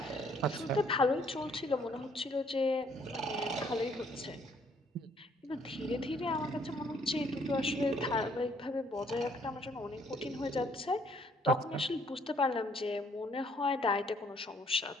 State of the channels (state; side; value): normal; both; correlation 0.65